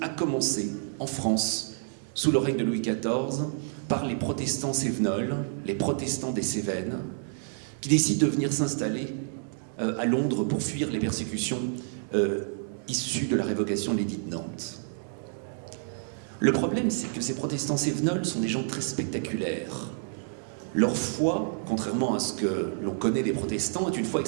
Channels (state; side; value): silent; left; digital silence